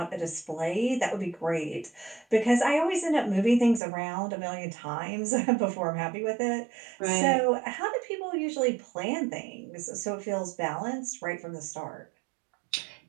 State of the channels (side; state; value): left; drops out; at 3.8 s